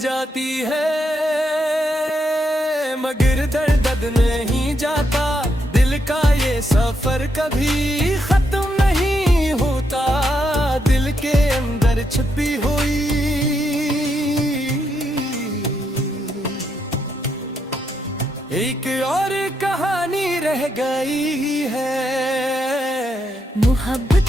है, मगर दर्द नहीं जाता। दिल का ये सफर कभी खत्म नहीं होता, दिल के अंदर छुपी हुई एक और कहानी रह गई है।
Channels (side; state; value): both; normal; correlation 0.80